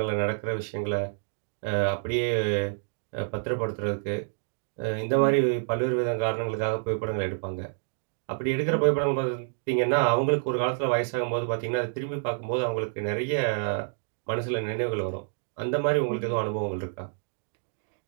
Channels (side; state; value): left; silent; digital silence